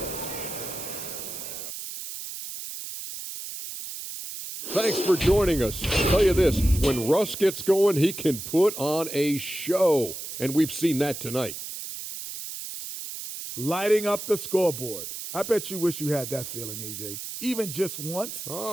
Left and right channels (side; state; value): right; noise; hiss, 8 dB below the sound